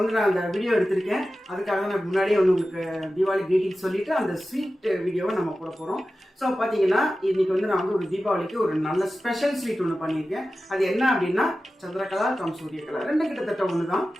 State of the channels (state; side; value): normal; both; correlation 0.94